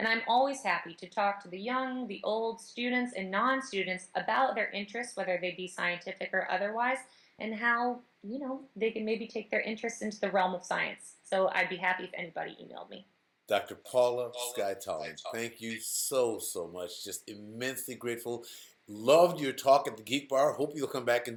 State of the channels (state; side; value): identical; both; correlation 1.00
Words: I'm always happy to talk to the young, the old, students, and non-students about their interests, whether they be scientific or otherwise, and how, they can maybe take their interests into the realm of science. So I'd be happy if anybody emailed me. Dr. Paula Skye Tallman, thank you so much. Just immensely grateful. Loved your talk at the Geek Bar. Hope you'll come back and